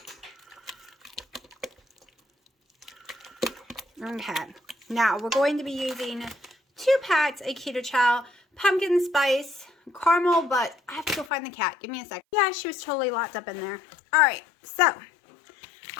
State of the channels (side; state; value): right; drops out; at 11.3 s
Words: Okay, now we're going to be using 2 packs of Keto Chow pumpkin spice caramel, but I have to go find the cat. Give me a sec. Yeah, she was totally locked up in there. All right, so